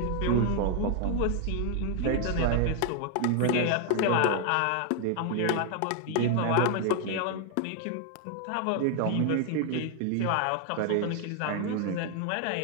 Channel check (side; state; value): both; different; correlation 0.00